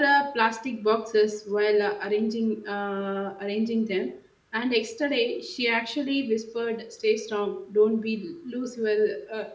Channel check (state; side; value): identical; both; correlation 1.00